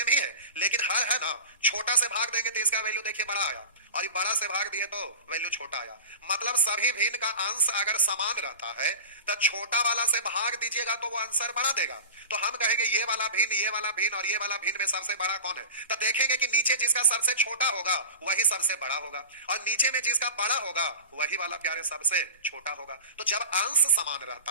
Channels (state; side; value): inverted; both; correlation -0.31